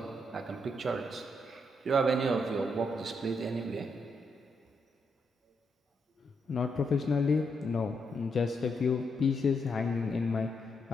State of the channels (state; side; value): normal; both; correlation 0.79